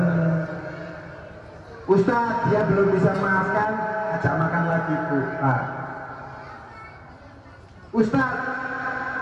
Ustadz, dia belum bisa maafkan, ajak makan lagi Bu. Pak. Ustadz,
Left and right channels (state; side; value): identical; both; correlation 1.00